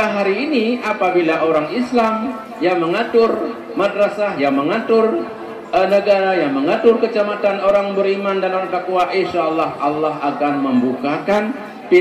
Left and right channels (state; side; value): identical; both; correlation 1.00